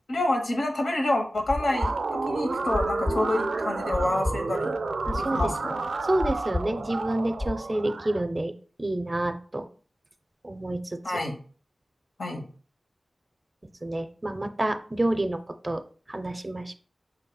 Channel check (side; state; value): both; normal; correlation 0.95